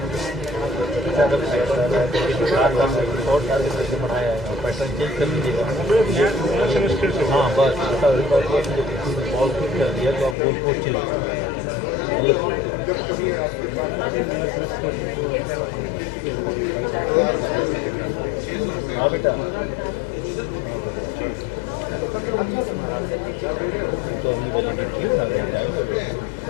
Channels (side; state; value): right; drops out; at 10.4 s